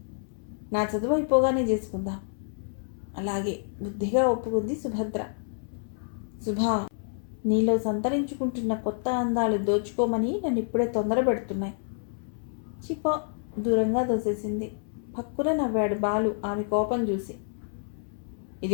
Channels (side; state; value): right; silent; 59 dB below the other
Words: నా చదువు అయిపోగానే చేసుకుందాం. అలాగే బుద్ధిగా ఒప్పుకుంది సుభద్ర. సుభా, నీలో సంతరించుకుంటున్న కొత్త అందాలు దోచుకోమని నన్ను ఇప్పుడే తొందర పెడుతున్నాయి. చిపో, దూరంగా దోసేసింది. పక్కున నవ్వాడు బాలు ఆమె కోపం చూసి.